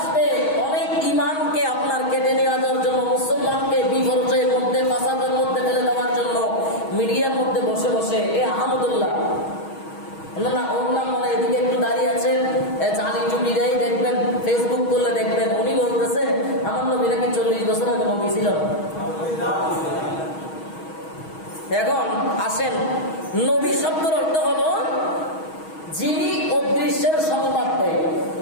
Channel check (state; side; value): late; right; 6.3 ms